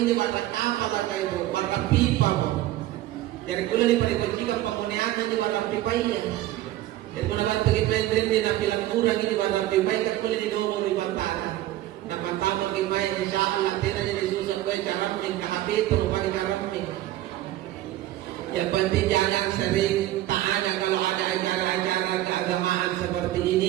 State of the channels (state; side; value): quieter; left; 14.8 dB